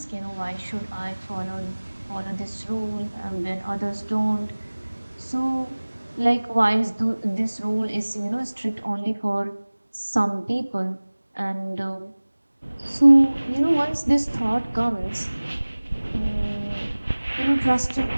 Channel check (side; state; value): both; inverted; correlation -1.00